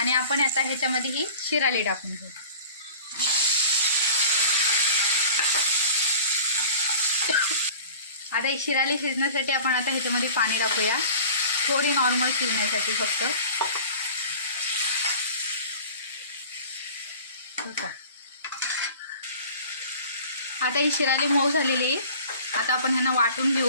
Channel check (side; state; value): both; inverted; correlation -0.42